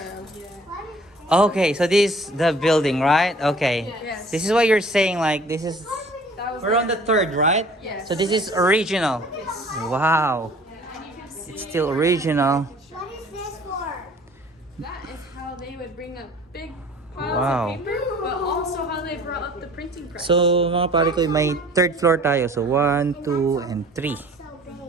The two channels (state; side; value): normal; both; correlation 0.50